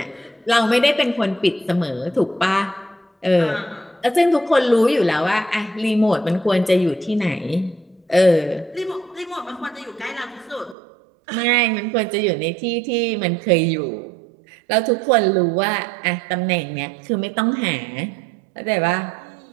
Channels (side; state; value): left; drops out; at 10.8 s